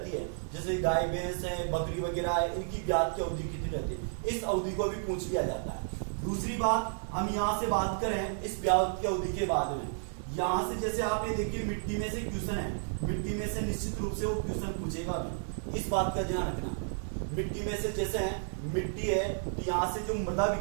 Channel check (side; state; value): left; silent; digital silence